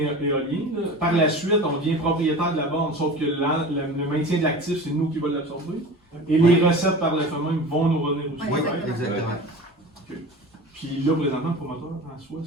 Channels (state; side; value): normal; both; correlation 0.35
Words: là, par la suite, on devient propriétaire de la borne, sauf que le maintien de l'actif, c'est nous qui va l'absorber. Et les recettes par le fait même vont nous revenir aussi. Ouais, Oui, exactement. Puis là, présentement, le promoteur en soi,